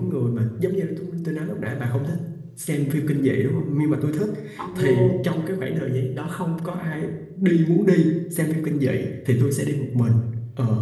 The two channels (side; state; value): both; identical; correlation 1.00